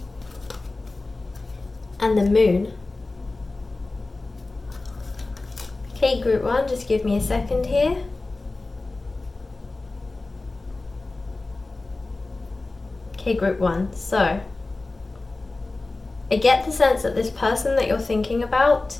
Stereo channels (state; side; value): quieter; right; 3.2 dB